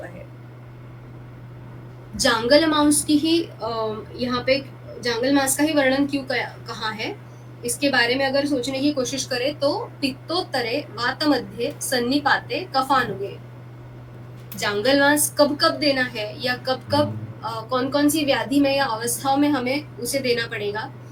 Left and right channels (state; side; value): identical; both; correlation 1.00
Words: है। जांगल मांस की ही यहाँ पे जांगल मांस का ही वर्णन क्यों कहा है, इसके बारे में अगर सोचने की कोशिश करें तो पित्तोत्तरे वात मध्य सन्निपाते कफानुगे। जांगल मांस कब कब देना है या कब कब कौन कौन सी व्याधि में या अवस्थाओं में हमें उसे देना पड़ेगा,